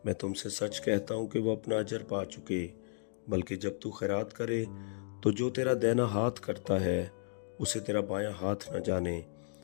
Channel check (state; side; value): silent; right; digital silence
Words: मैं तुमसे सच कहता हूँ कि वो अपना अजर पा चुके। बल्कि जब तू खैरात करे तो जो तेरा दाहिना हाथ करता है उसे तेरा बायां हाथ न जाने,